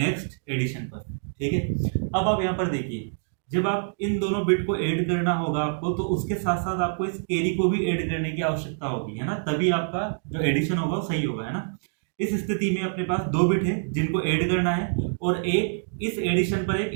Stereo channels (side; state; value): left; silent; digital silence